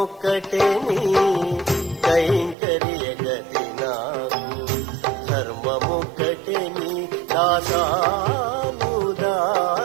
నీ కైంకర్య గతి నాకు, ధర్మముక్కటే నీ దాసానుదాస్యము.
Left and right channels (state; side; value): drops out; left; at 2.6 s